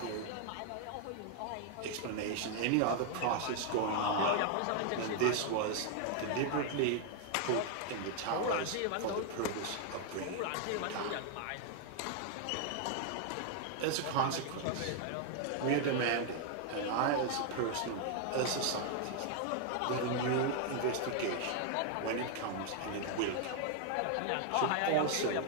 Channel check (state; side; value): different; both; correlation 0.00